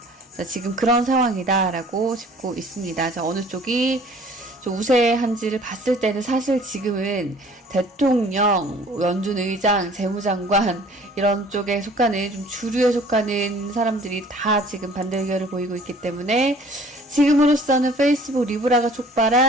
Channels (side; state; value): both; normal; correlation 0.52